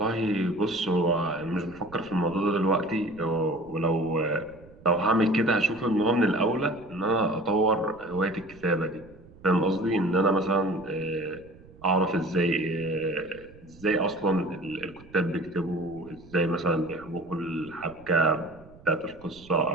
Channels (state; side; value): noise; right; rumble, 22 dB below the sound